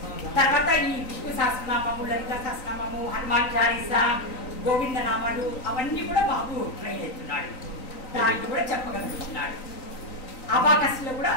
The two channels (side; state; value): right; late; 3.9 ms